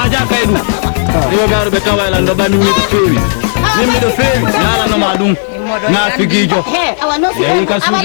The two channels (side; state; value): right; silent; digital silence